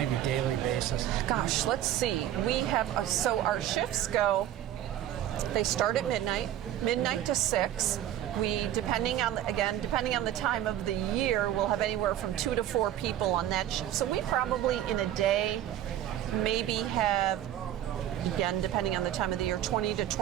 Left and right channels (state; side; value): quieter; left; 11.9 dB